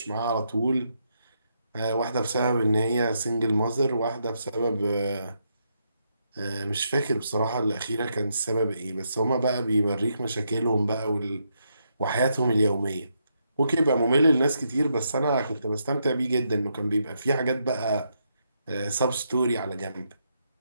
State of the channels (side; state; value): both; inverted; correlation -0.80